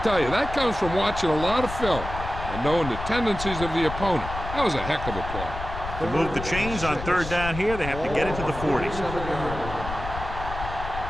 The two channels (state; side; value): noise; left; rumble, 8 dB below the sound